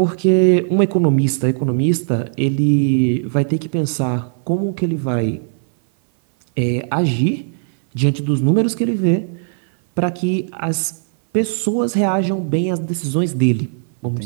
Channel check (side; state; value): left; silent; 59 dB below the other